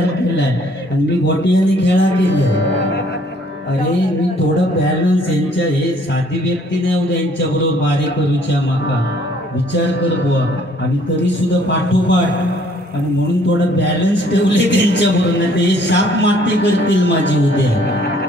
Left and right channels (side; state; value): both; normal; correlation 0.61